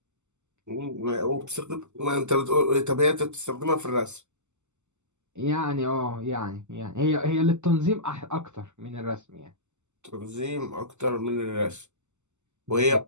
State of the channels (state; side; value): late; left; 0.83 ms